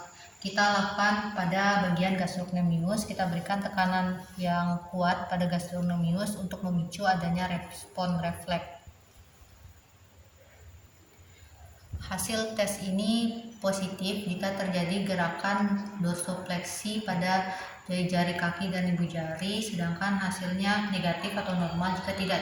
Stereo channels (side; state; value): both; identical; correlation 1.00